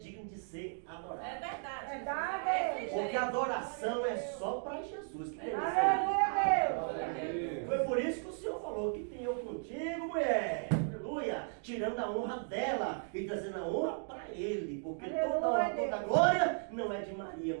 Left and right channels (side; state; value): left; silent; 54 dB below the other